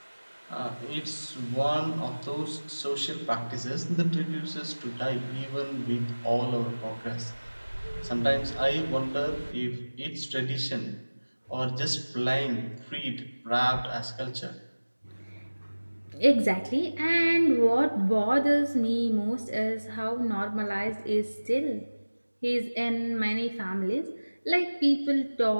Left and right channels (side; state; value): both; inverted; correlation -1.00